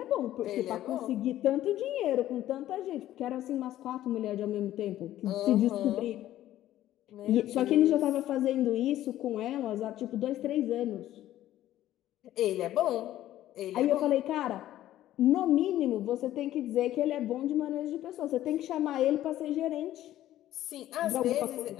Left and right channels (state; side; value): quieter; right; 13.4 dB